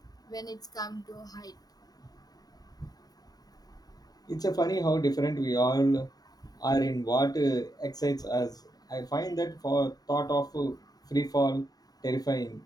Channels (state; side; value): late; right; 0.18 ms